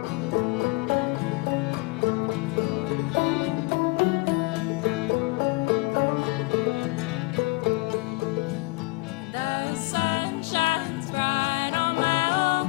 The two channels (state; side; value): quieter; right; 25.2 dB